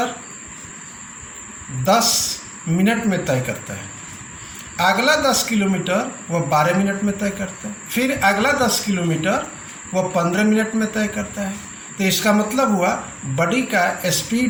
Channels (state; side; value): identical; both; correlation 1.00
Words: 10 मिनट में तय करता है, अगला 10 किलोमीटर वह 12 मिनट में तय करता है, फिर अगला 10 किलोमीटर वह 15 मिनट में तय करता है। तो इसका मतलब हुआ बॉडी का